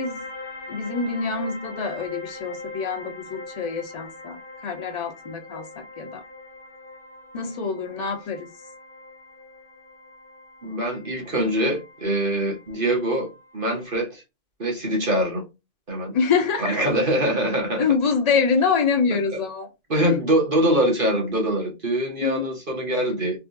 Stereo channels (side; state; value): left; late; 2.5 ms